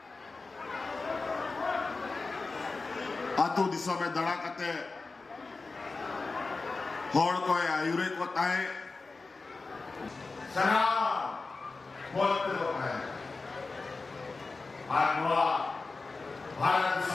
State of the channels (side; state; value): right; quieter; 3.8 dB